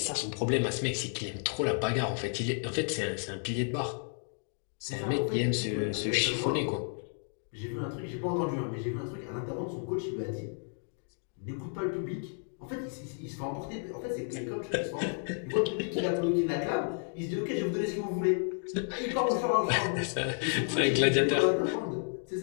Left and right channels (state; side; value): silent; right; 56 dB below the other